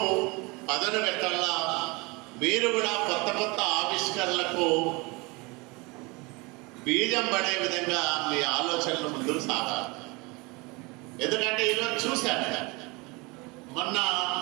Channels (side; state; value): left; quieter; 26.3 dB